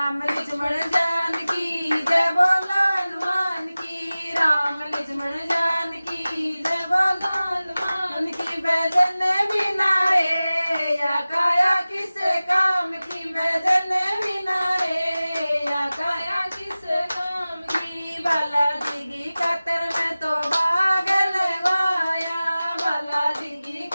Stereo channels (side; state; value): both; inverted; correlation -0.97